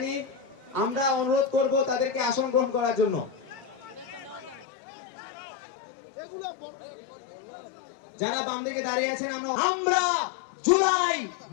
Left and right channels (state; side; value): drops out; right; at 4.7 s